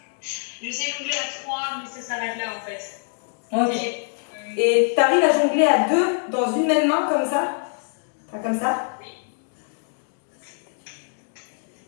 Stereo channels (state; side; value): silent; right; 56 dB below the other